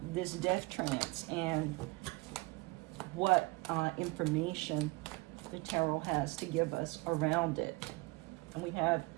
this death trance and what information the tarot has to give us around it. And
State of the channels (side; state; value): left; quieter; 24.2 dB